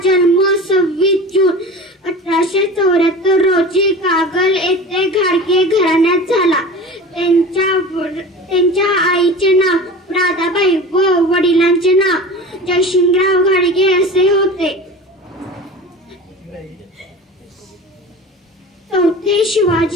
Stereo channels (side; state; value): both; normal; correlation 0.35